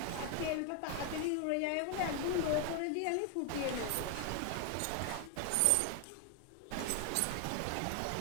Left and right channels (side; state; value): both; different; correlation 0.00